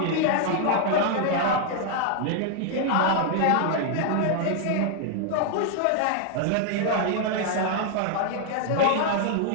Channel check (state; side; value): different; both; correlation 0.00